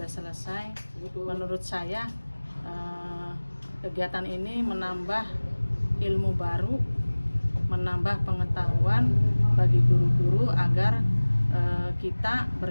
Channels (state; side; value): inverted; both; correlation -1.00